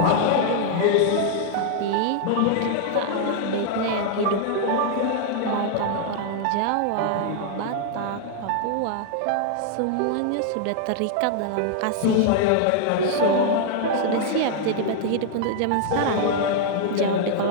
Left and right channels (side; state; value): both; different; correlation 0.00